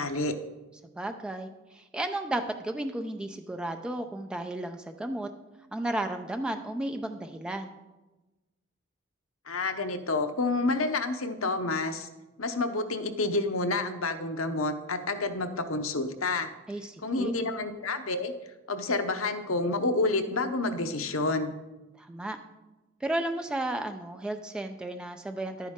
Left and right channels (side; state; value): both; normal; correlation 0.16